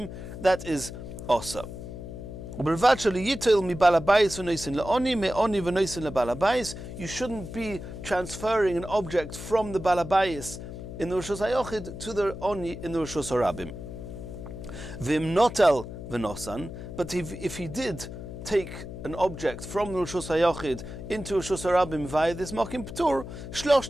that is also. You shouldn't be transferring an object from the balabayis in the Reshus HaYochid to the oni in the Reshus HaRabim. V'im notel v'nosan, but if he did take an object from the Reshus HaYochid into Reshus HaRabim via this mokim ptur,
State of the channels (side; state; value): left; noise; hum, 10 dB below the sound